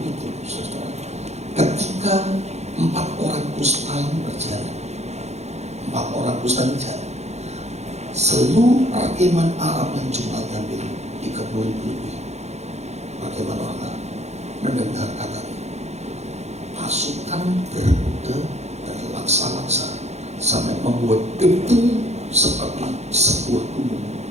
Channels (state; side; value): late; left; 0.32 ms